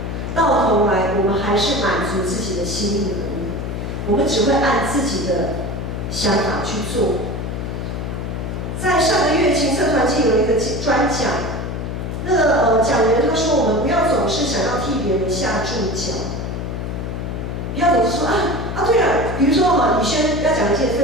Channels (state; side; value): noise; left; hum, 4 dB below the sound